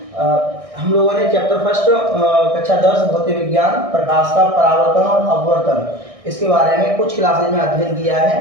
हम लोगों ने चैप्टर फर्स्ट कक्षा 10 भौतिक विज्ञान प्रकाश का परावर्तन और अपवर्तन इसके बारे में कुछ क्लासेज में अध्ययन किया है।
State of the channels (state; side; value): late; left; 1.6 ms